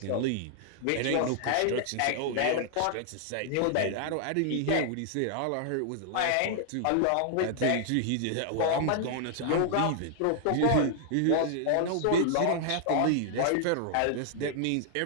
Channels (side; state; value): both; different; correlation -0.01